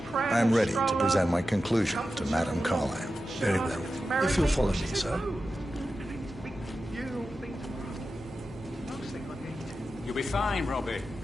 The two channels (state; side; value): normal; both; correlation 0.92